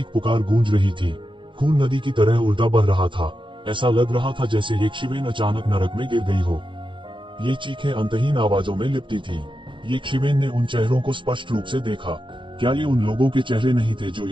पुकार गूंज रही थी। खून नदी की तरह उल्टा बह रहा था। ऐसा लग रहा था जैसे एक शिवेन अचानक नरक में गिर गई हो। ये चीखें अंतहीन आवाजों में लिपटी थी। ये शिवेन ने उन चेहरों को स्पष्ट रूप से देखा। क्या ये उन लोगों के चेहरे नहीं थे जो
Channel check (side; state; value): left; late; 0.24 ms